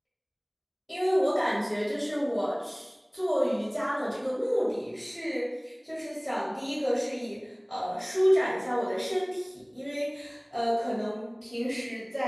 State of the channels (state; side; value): identical; both; correlation 1.00